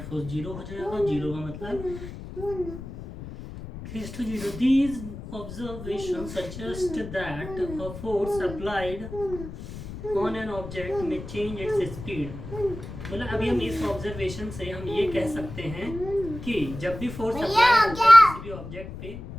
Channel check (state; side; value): noise; left; rumble, 11 dB below the sound